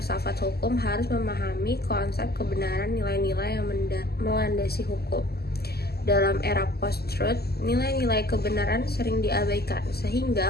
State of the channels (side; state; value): right; late; 0.46 ms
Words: hukum harus memahami konsep kebenaran nilai-nilai yang melandasi hukum. Dalam era post-truth, nilai-nilai kebenaran sering diabaikan,